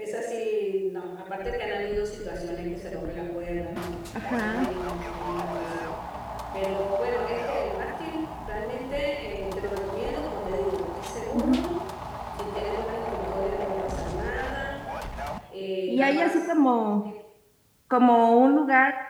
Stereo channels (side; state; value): both; identical; correlation 1.00